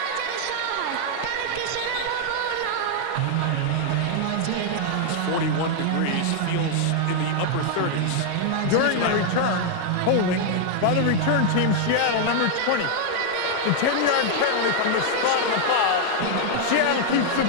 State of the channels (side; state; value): both; different; correlation 0.00